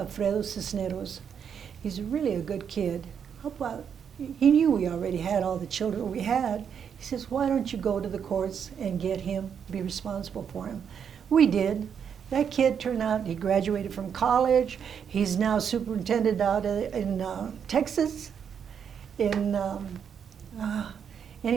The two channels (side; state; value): left; quieter; 7.6 dB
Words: Cisneros. He's really a good kid. How about, he knew we already had all the children we had. He says, why don't you go to the courts and get him, be responsible for him? We did. That kid turned out, he graduated from college. He's now superintendent out in Texas. Anyway,